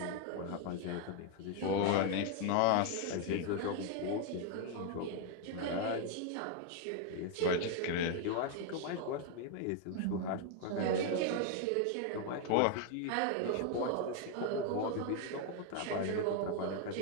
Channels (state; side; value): different; both; correlation 0.01